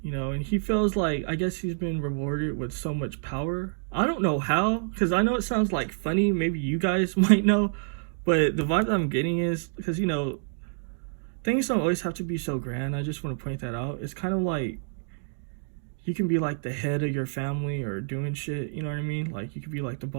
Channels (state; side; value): silent; left; digital silence